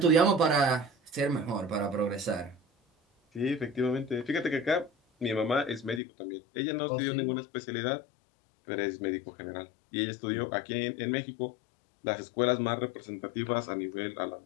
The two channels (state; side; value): drops out; right; at 6.0 s